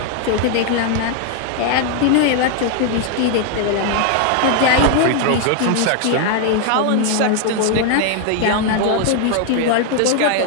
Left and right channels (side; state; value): both; different; correlation 0.00